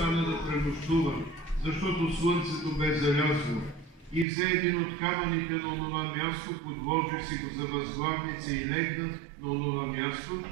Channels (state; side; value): drops out; left; at 4.2 s